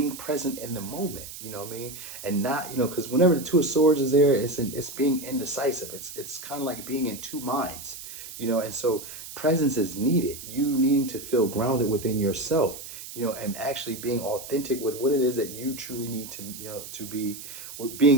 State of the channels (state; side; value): noise; right; hiss, 12 dB below the sound